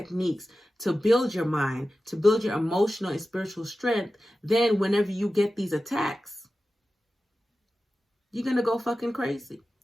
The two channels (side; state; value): both; normal; correlation 0.94